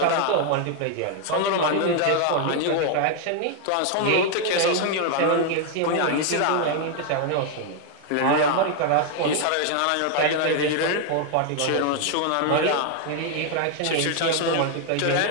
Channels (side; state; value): both; different; correlation 0.00